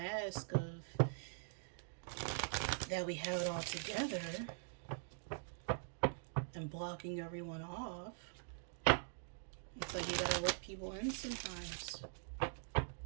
of that we have it all together and blocking everyone off. It's like you gotta let people in sometimes.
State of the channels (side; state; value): left; silent; digital silence